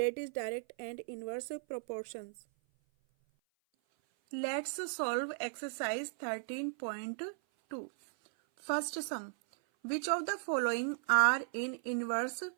is direct and inverse proportions. Let's solve exercise 13.2. First sum. Which of the following are in inverse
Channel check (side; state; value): left; silent; 54 dB below the other